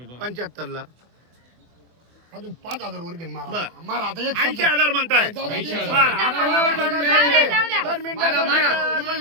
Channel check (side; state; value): left; late; 24 ms